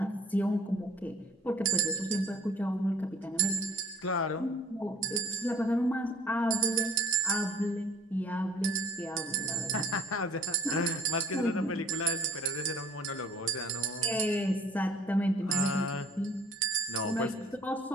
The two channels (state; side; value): normal; both; correlation 0.52